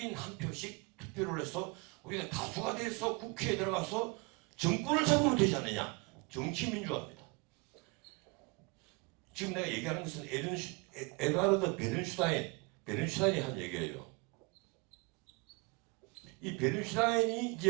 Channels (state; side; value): quieter; left; 29.1 dB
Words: 한 표씩 투표를 해서 우리가 다수가 돼서 국회에 들어가서 정권을 잡으면 되지 않느냐. 정치민주화입니다. 지금 내가 얘기하는 것은 에드와르드 베른슈타인이 한 얘기예요. 이 베른슈타인이